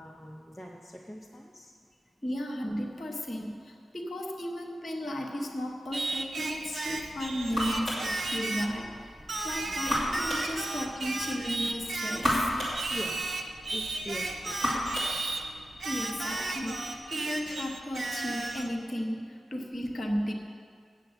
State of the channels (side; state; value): both; normal; correlation 0.91